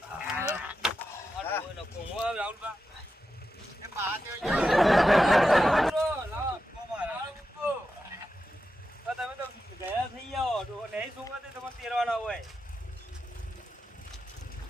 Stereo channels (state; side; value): normal; both; correlation 0.89